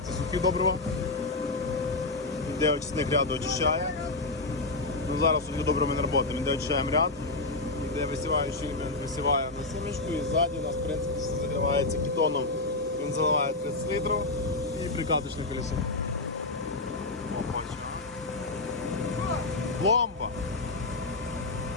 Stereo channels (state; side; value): quieter; right; 3.2 dB